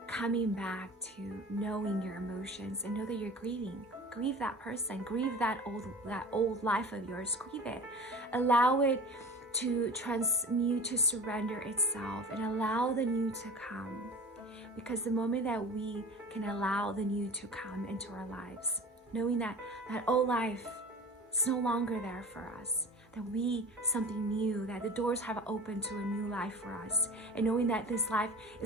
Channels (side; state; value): both; normal; correlation 0.37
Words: coming back to knowing your emotions and know that you're grieving. Grieve that person. Grieve that old life of yours. Grieve it. Allow it to transmute, to surrender itself, and allow the new to come. Because the moment that we can allow the new to come into our lives, knowing that old life is no longer there for us, that we something new, that the doors have opened to a new life for us, and knowing that this life